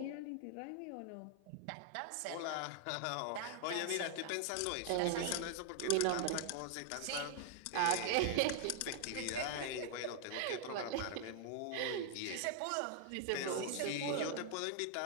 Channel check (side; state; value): both; different; correlation 0.00